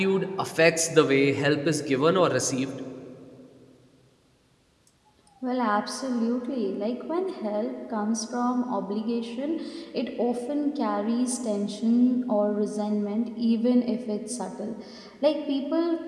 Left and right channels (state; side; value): identical; both; correlation 1.00